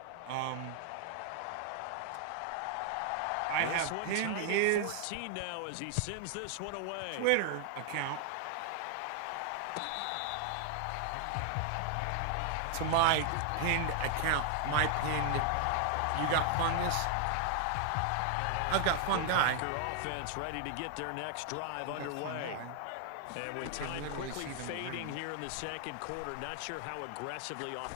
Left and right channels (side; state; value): both; different; correlation 0.00